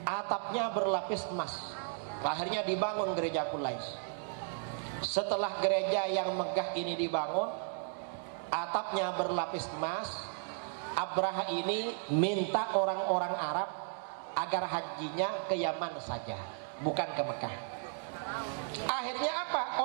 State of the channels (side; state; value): left; silent; 55 dB below the other